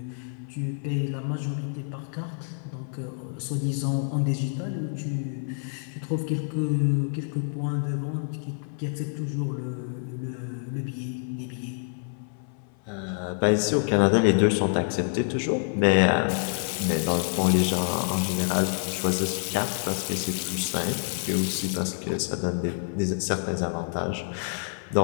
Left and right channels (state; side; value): silent; right; 55 dB below the other